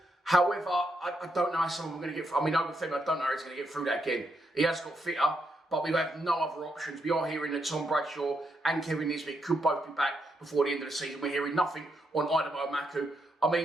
However, I don't know how someone we're going to get through. I mean, Obafemi, I don't know how he's going to get through that again. He has got fitter, but we have no other options. We are hearing that Tom Bradshaw and Kevin Nisbet could both be back before the end of the season. We're hearing nothing on Idemo Maku. I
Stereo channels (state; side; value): normal; both; correlation 0.80